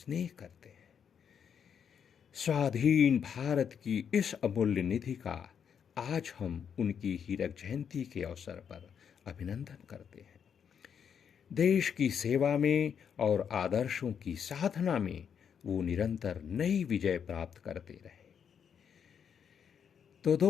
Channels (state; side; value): quieter; right; 7.6 dB